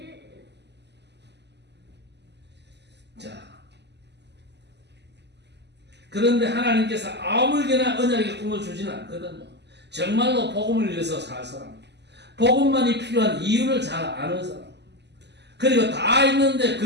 자, 그런데 하나님께서 아무에게나 언약의 꿈을 주지는 않거든요. 정말로 복음을 위해서 살 사람, 복음만이 필요한 이유를 잘 아는 사람, 그리고 다 있는데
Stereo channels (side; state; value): left; late; 0.50 ms